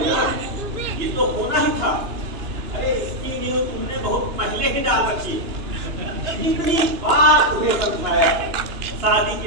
ये तो होना ही था। अरे इसकी न्यूज़ तुमने बहुत पहले ही डाल रखी। इतनी बार तुम्हें समझाया, शादी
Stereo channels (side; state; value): left; late; 2.9 ms